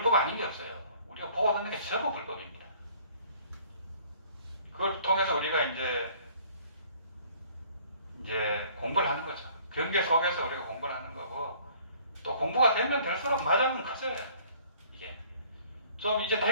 아닌 게 없어요. 우리가 보고 듣는 게 전부 불법입니다. 그걸 통해서 우리가 이제 공부를 하는 거죠. 경계 속에서 우리가 공부를 하는 거고 또 공부가 되면 될수록 마장은 커져요. 이게 좀 이제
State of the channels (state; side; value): inverted; both; correlation -0.56